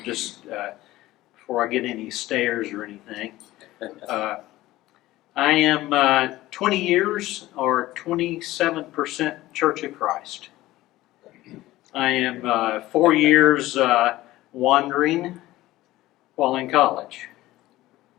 just before I get any stares or anything, I am 20 years or 27% Church of Christ. I am 4 years wandering while in college.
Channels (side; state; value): right; quieter; 16.7 dB